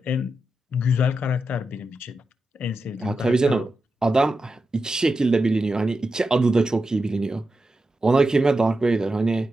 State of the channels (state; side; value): normal; both; correlation 0.89